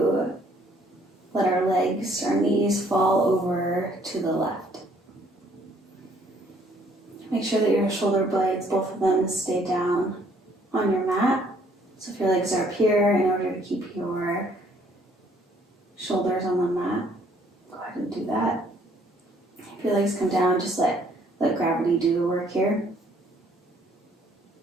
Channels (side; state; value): both; normal; correlation 0.63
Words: let our legs, our knees fall over to the left. Make sure that your shoulder blades, both of them, stay down on your mat. So if your legs are up here, in order to keep your shoulders on the mat, go ahead and do that. If your legs come down, just let gravity do the work here.